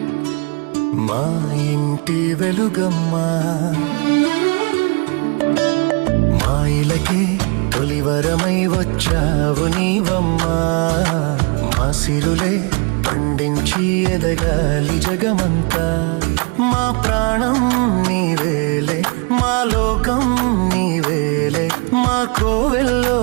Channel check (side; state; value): left; quieter; 34.0 dB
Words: మా ఇంటి వెలుగమ్మా మా ఇలకే తొలివరమై వచ్చావు నీవమ్మా మా సిరులే పండించి ఎదగాలి జగమంతా మా ప్రాణం నీవేలే మా లోకం నీవేలే మా కోవెల్లో